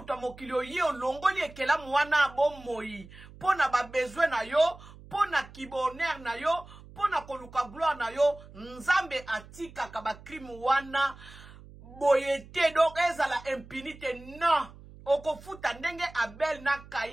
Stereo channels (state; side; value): noise; right; hum, 19 dB below the sound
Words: mokili oye olongoli ekelamu wana bomoi. Pona ba besoin na yo, pona kiboner na yo, pona koluka gloire na yo. Nzambe atika kaba crime wana boyete donc ezala impunité non. Okofuta ndenge Abel na